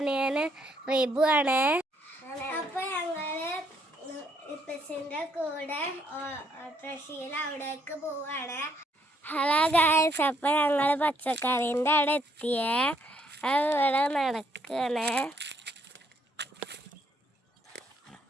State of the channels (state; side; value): normal; both; correlation 0.71